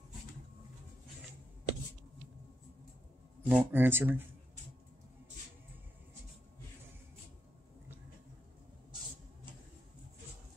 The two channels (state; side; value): normal; both; correlation 0.83